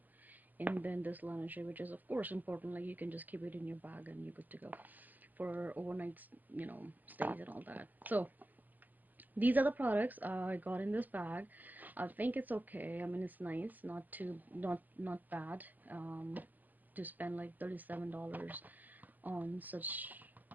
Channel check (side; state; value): left; late; 0.084 ms